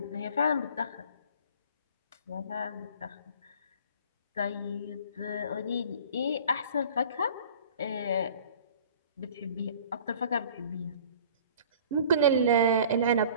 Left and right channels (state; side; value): inverted; both; correlation -0.47